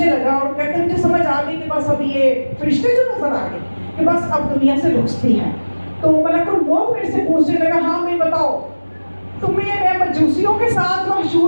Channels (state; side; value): inverted; both; correlation -1.00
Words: لگا اور کہتے ہیں مجھے سمجھ آ گئی کہ بس اب یہ فرشتے جو نظر آ گئے کہ بس اب دنیا سے رخصتی ہے۔ تو ملک الموت میرے سے پوچھنے لگا ہاں میں بتاؤ تمہیں میں مجوسیوں کے ساتھ